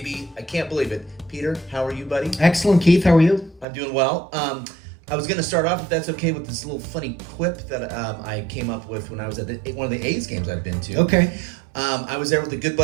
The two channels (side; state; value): left; drops out; at 3.7 s